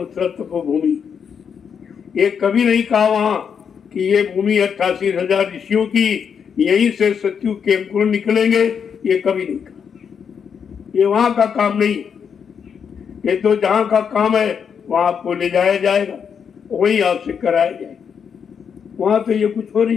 तपोभूमि, ये कभी नहीं कहा वहां कि ये भूमि 88,000 ऋषियों की, यहीं से सत्यु के अंकुर निकलेंगे, ये कभी नहीं कहा। ये वहां का काम नहीं, ये तो जहां का काम है वहां आपको ले जाया जाएगा, वही आपसे कराया जाएगा। वहां तो ये कुछ हो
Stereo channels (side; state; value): right; quieter; 7.1 dB